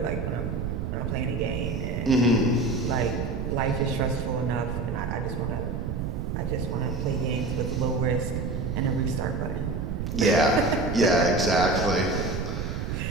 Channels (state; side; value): noise; right; rumble, 3 dB below the sound